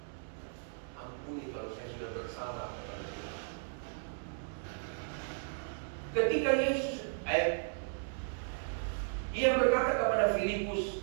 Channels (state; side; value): silent; left; digital silence